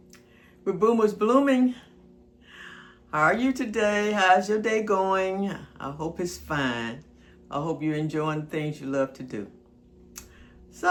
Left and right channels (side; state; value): both; identical; correlation 1.00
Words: with Boomers Blooming. How are you today? How's your day going? I hope it's fine. I hope you're enjoying the things you love to do.